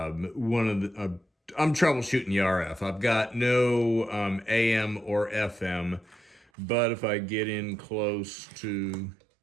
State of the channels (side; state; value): left; drops out; at 6.5 s